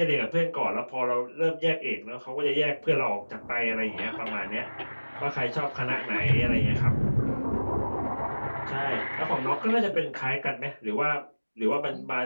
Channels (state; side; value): inverted; both; correlation -1.00